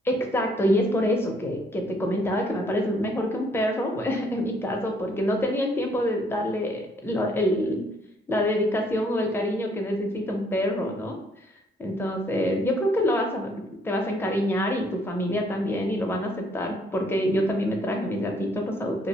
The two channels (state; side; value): normal; both; correlation 0.66